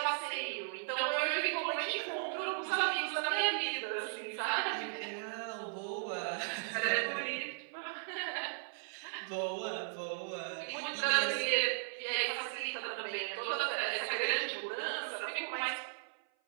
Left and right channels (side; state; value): left; silent; 53 dB below the other